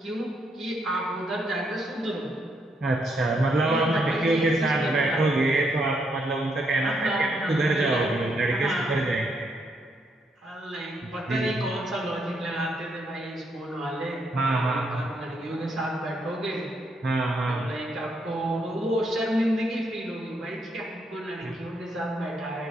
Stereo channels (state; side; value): normal; both; correlation 0.76